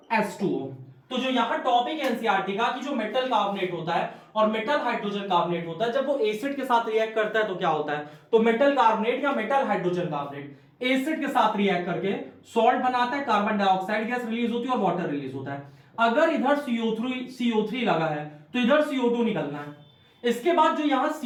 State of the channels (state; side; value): identical; both; correlation 1.00